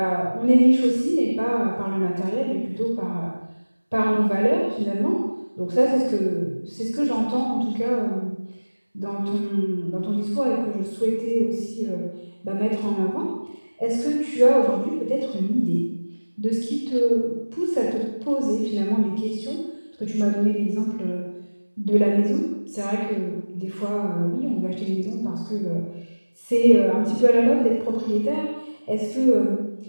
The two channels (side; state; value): both; inverted; correlation -1.00